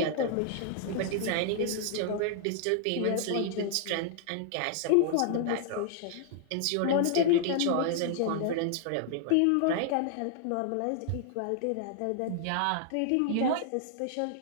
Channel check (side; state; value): both; different; correlation -0.01